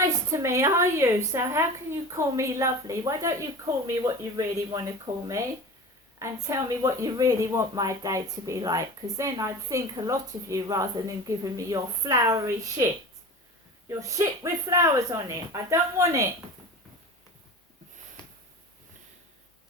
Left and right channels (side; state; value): both; normal; correlation 0.34